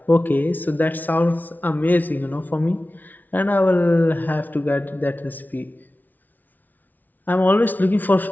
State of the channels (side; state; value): right; late; 0.081 ms